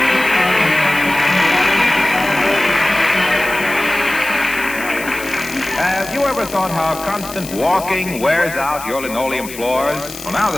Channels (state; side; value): noise; left; hiss, 13 dB below the sound